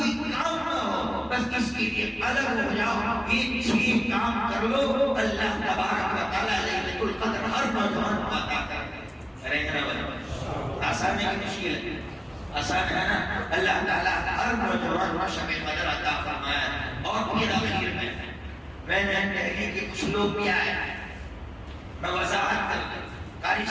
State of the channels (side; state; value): both; identical; correlation 1.00